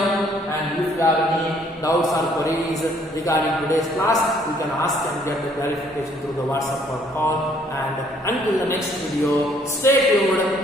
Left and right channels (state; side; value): normal; both; correlation 0.63